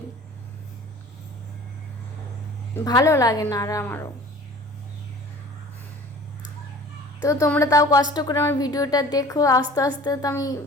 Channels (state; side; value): normal; both; correlation 0.45